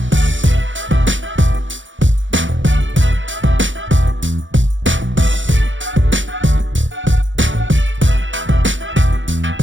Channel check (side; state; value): left; late; 0.55 ms